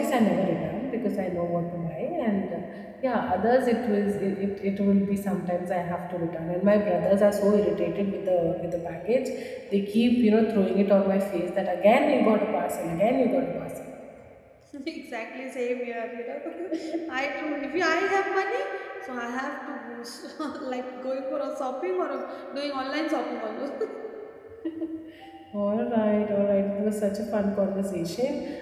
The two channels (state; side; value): identical; both; correlation 1.00